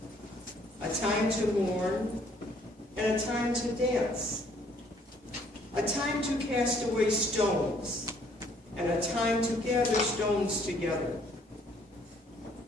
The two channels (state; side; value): normal; both; correlation 0.63